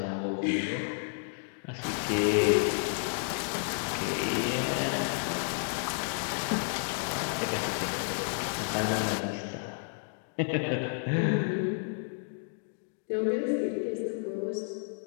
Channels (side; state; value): right; silent; digital silence